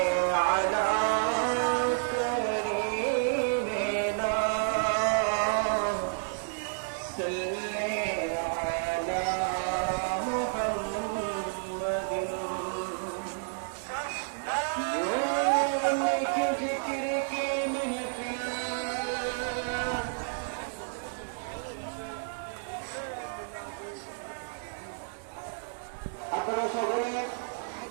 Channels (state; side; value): silent; left; 57 dB below the other